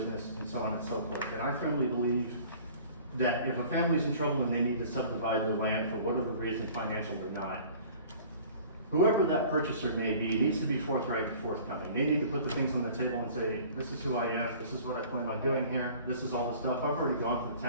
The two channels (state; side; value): inverted; both; correlation -0.48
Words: and so on and so forth. And I firmly believe that if a family's in trouble and they need to subdivide their land for whatever reason, financial or not, whoever that purchaser may be needs to be forthright and forthcoming. They need to put the things on the table and say, this is who I am, this is what I plan on doing here, this is all the stuff. I've already gone from the